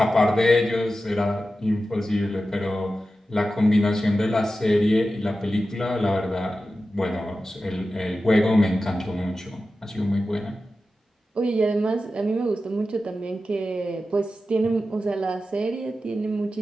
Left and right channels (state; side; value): normal; both; correlation 0.93